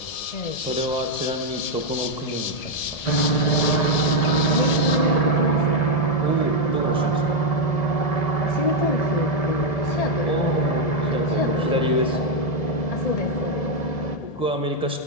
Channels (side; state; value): right; late; 1.7 ms